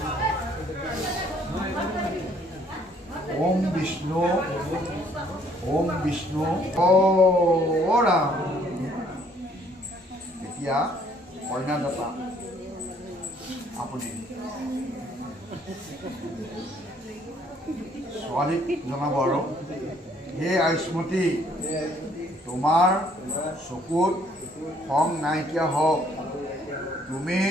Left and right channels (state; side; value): normal; both; correlation 0.63